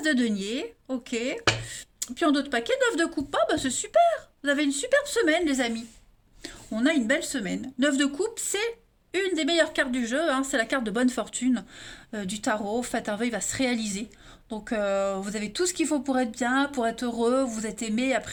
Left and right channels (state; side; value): identical; both; correlation 1.00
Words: de denier. Ok. Puis en d'autres paquets, 9 de coupe. Ah bah c'est super. Vous avez une superbe semaine les amis. On a une belle semaine. 9 de coupe, c'est une des meilleures cartes du jeu. Hein. C'est la carte de bonne fortune du tarot. Faites un vœu, il va se réaliser. Donc vous avez tout ce qu'il faut pour être bien, pour être heureux, vous êtes aimé,